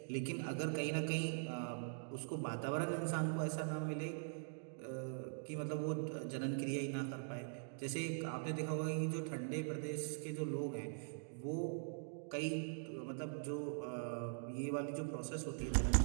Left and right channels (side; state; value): left; silent; digital silence